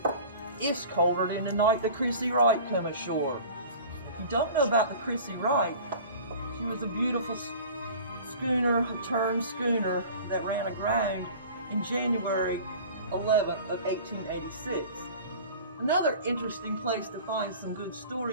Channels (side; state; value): both; inverted; correlation -0.42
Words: it's colder than the night the Creech Wright come ashore. If you don't know about the Creech Wright, she was a beautiful schooner, a turned schooner that ran aground in January 11th of 1886. Another interesting place to find some good